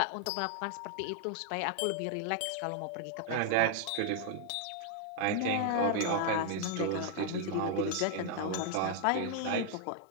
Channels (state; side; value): different; both; correlation 0.00